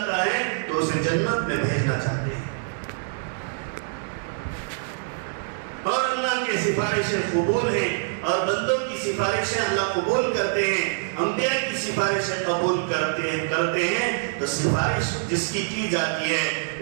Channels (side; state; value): left; silent; digital silence